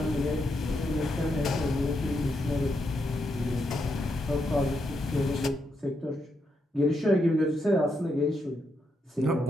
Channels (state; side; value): normal; both; correlation 0.81